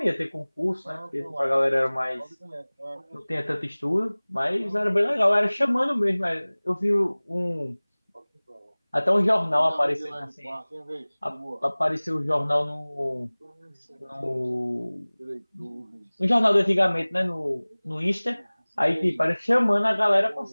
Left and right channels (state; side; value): inverted; both; correlation -1.00